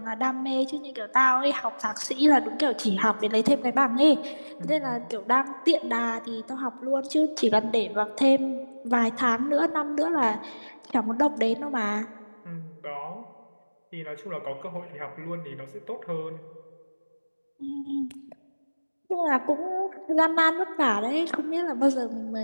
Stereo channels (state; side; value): inverted; both; correlation -1.00